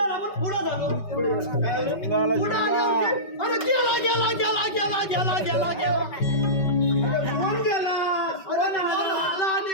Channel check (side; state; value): right; late; 5.2 ms